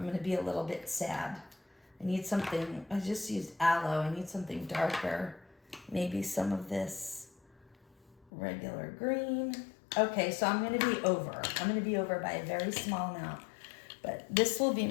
gonna be a little bit sad. I need something, I just used aloe. I need something darker. Maybe some of this regular green. Okay, so I'm gonna be over. I'm gonna be over by a very small amount. But this will be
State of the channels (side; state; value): right; drops out; at 8.3 s